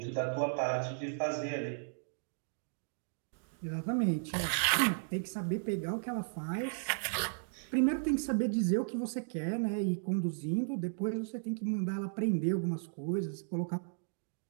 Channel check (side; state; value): left; silent; digital silence